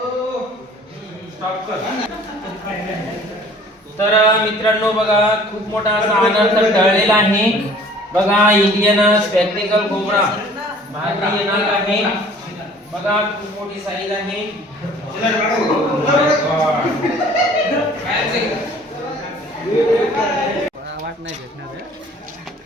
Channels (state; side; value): normal; both; correlation 0.51